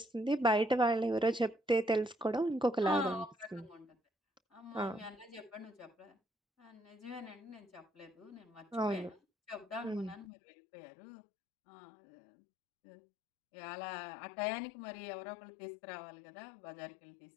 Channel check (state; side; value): drops out; right; at 10.2 s